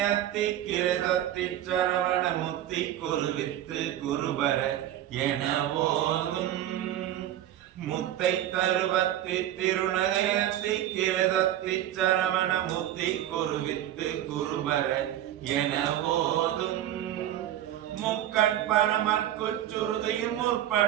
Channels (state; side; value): quieter; left; 12.2 dB